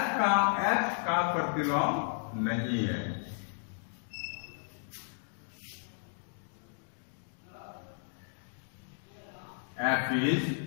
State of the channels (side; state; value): right; silent; digital silence